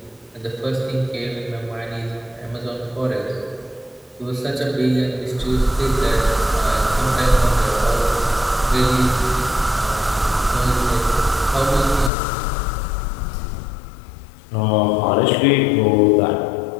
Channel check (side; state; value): right; drops out; at 12.1 s